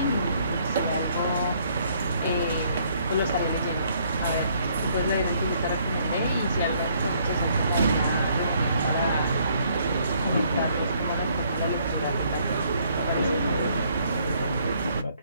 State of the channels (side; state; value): both; inverted; correlation -0.66